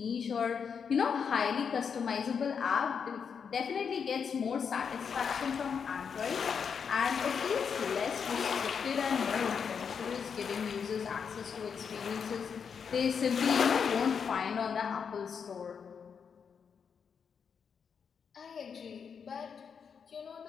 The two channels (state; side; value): quieter; right; 6.6 dB